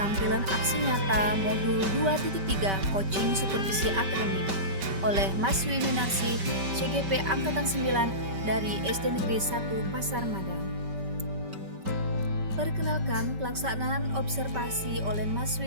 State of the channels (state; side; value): late; left; 5.2 ms